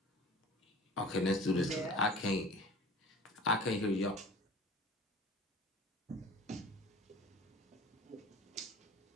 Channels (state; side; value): normal; both; correlation 0.42